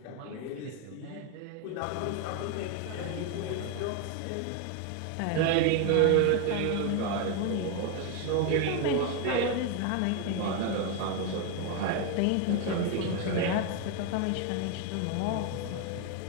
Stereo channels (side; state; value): both; different; correlation 0.02